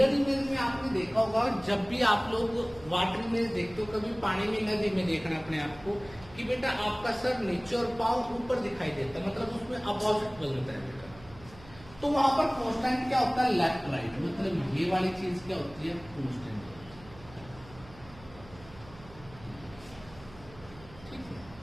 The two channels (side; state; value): right; noise; hum, 20 dB below the sound